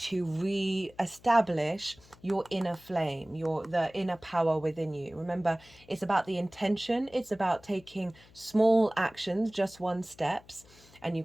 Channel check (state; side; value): noise; left; hum, 25 dB below the sound